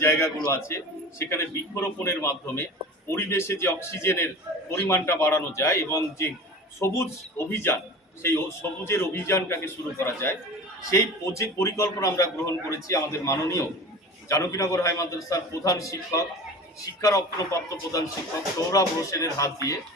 জায়গাগুলো আছে সেখানে বৃক্ষরোপণের মাধ্যমে পরিবেশে যে অক্সিজেনের পরিমাণটা বাড়ানো যায় এবং যে সবুজ অভিযান, সেই সবুজের অভিযানটাকে শুরু করা যায়, সেই পরিকল্পনা আমরা গ্রহণ করেছি। আমাদের মাননীয় জানকীনগর হাই মাদ্রাসার প্রধান শিক্ষক, শিক্ষারত্নপ্রাপ্ত প্রধান শিক্ষক সৌরভ হোসেনের হাত দিয়ে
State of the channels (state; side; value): normal; both; correlation 0.36